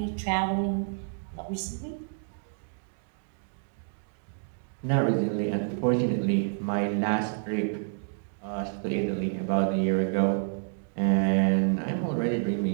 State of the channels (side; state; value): left; silent; digital silence